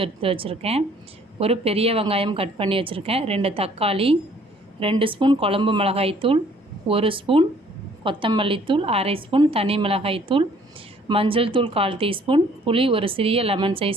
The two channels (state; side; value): normal; both; correlation 0.59